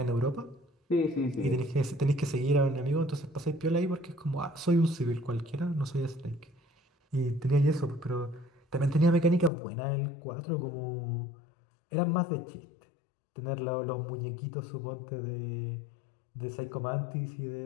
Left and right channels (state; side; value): drops out; right; at 9.5 s